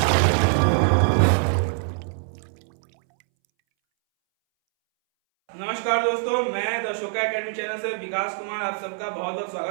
दोस्तों, मैं द अशोका एकेडमी चैनल से विकास कुमार आप सबका बहुत बहुत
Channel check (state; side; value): silent; left; 62 dB below the other